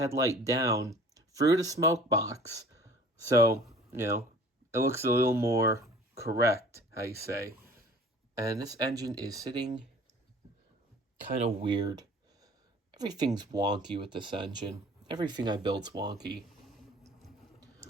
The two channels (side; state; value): both; normal; correlation 0.47